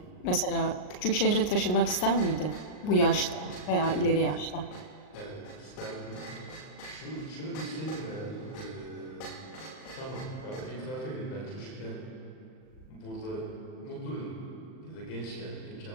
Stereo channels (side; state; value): right; late; 39 ms